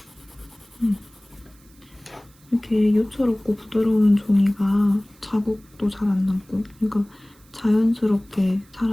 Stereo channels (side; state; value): right; noise; hiss, 29 dB below the sound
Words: 이렇게 요철 없고 부드러운 종이가 자국도 잘 안 남고 그러니까 자연스럽게